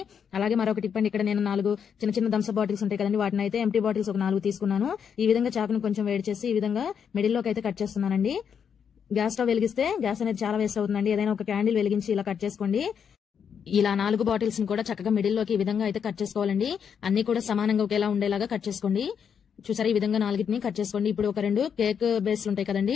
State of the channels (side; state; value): right; quieter; 7.4 dB